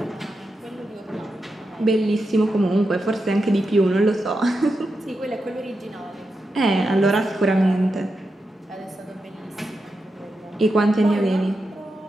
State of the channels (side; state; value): both; normal; correlation 0.88